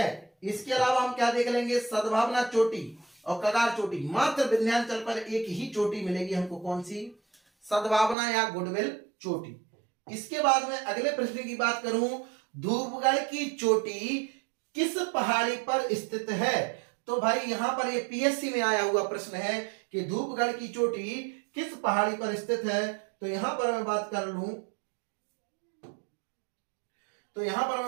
इसके अलावा हम क्या देख लेंगे, सद्भावना चोटी और कगार चोटी। मात्र विंध्याचल पर एक ही चोटी मिलेगी हमको, कौन सी? सद्भावना या गुडविल चोटी। इसके बाद में अगले प्रश्न की बात करूं, धूपगढ़ की चोटी किस पहाड़ी पर स्थित है? तो भाई यहां पर ये पीएससी में आया हुआ प्रश्न है कि धूपगढ़ की चोटी किस पहाड़ी पर स्थित है। तो यहां पर मैं बात कर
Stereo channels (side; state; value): left; drops out; at 8.2 s